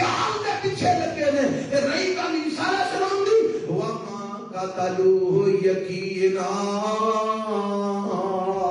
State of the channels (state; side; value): identical; both; correlation 1.00